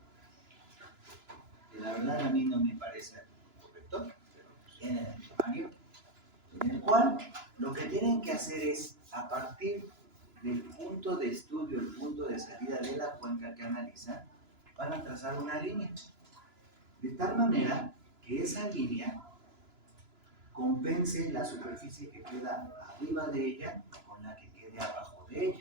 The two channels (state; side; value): late; left; 2.9 ms